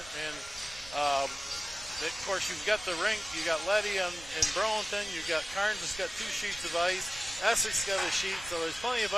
of course, you've got the rink. You got Letty in Burlington. You've got Carnes has got 2 sheets of ice. Essex got a sheet. So there's plenty of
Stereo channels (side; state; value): right; noise; rumble, 19 dB below the sound